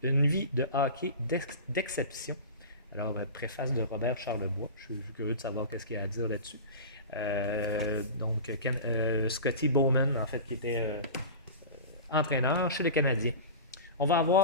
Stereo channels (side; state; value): both; inverted; correlation -0.31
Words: une vie de hockey d'exception. Alors, préface de Robert Charlebois. Je suis curieux de savoir qu'est-ce qu'il y a à dire là-dessus. Donc, Scotty Bowman, en fait, qui était entraîneur chez le Canadien. On va